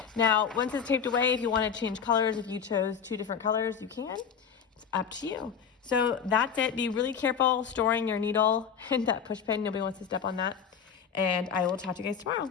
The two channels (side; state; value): right; quieter; 7.1 dB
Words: Now, once it's taped away, if you wanna change colors, if you chose 2 different colors, you can. It's up to you. So that's it. Be really careful storing your needle and that push pin. Nobody wants to step on that. And I will talk to you guys